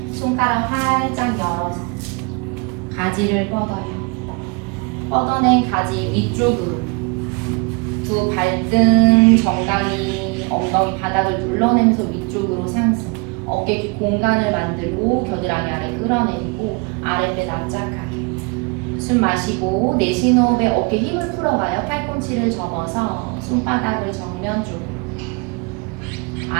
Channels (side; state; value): left; quieter; 31.1 dB